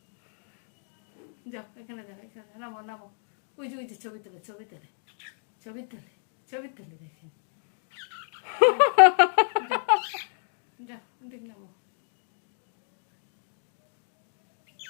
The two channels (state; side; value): silent; right; 58 dB below the other